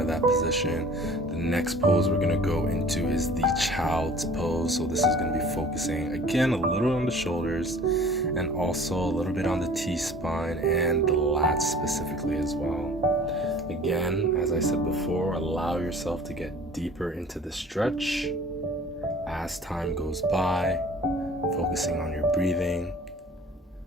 that position. The next pose we're going to go into is the child's pose. So this is going to be focusing again a little on the shoulders and also a little bit on the T-spine and the lats specifically as well. Again, as I said before, allow yourself to get deeper into the stretch as time goes by, focusing on your breathing,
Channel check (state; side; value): normal; both; correlation 0.47